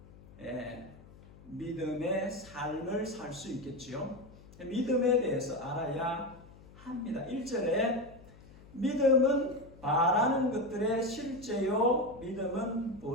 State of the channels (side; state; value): left; noise; hum, 21 dB below the sound